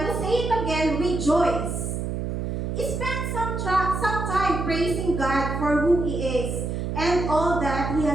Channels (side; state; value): right; noise; hum, 3 dB below the sound